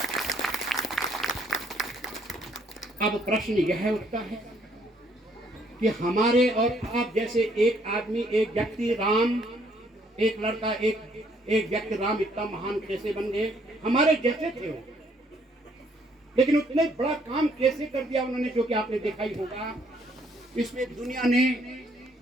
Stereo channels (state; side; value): normal; both; correlation 0.66